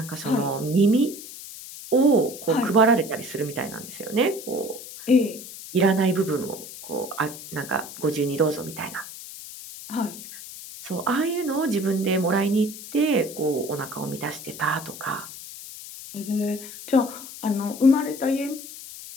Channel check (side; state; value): left; noise; hiss, 13 dB below the sound